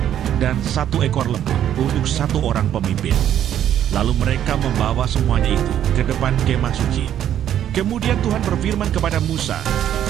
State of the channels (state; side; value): quieter; left; 10.5 dB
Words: dan 1 ekor lembu untuk 1 orang pemimpin. Lalu mereka membawa semuanya itu ke depan kemah suci. Kemudian Tuhan berfirman kepada Musa,